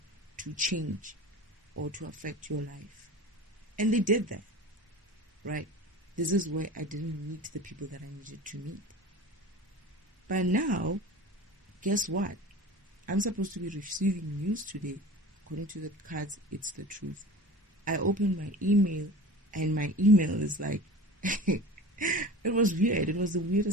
to change or to affect your life. And they did that, right? This is where I didn't meet the people that I needed to meet. But now, guess what? I'm supposed to be receiving news today. According to the cards, it's the truth. I opened my email, and my email is like, it was weird. It was the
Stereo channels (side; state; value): both; normal; correlation 0.36